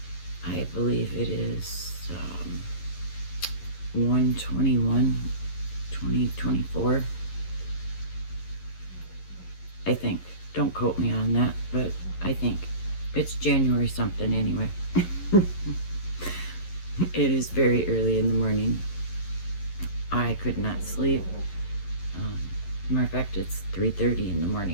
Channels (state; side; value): late; right; 11 ms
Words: I believe it is 1/21, 2024. I think. Don't quote me on that, but I think it's January something anyway. It is very early in the morning. I could not sleep. Matter of fact, it's 3:30 in the